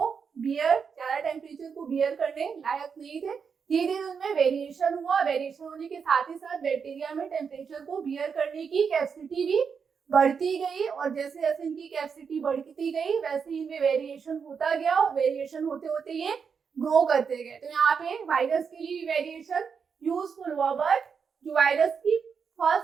ज्यादा टेम्परेचर को बियर करने लायक नहीं थे। धीरे धीरे उनमें वेरिएशन हुआ, वेरिएशन होने के साथ ही साथ बैक्टीरिया में टेम्परेचर को बियर करने की कैपेसिटी भी बढ़ती गई, और जैसे जैसे इनकी कैपेसिटी बढ़ती गई वैसे ही इनमें वेरिएशन होता गया, और वेरिएशन होते होते ये ग्रो करते गए। तो यहाँ पे वायरस के लिए वेरिएशन यूजफुल हुआ, बट जो वायरस की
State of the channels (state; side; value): quieter; left; 6.2 dB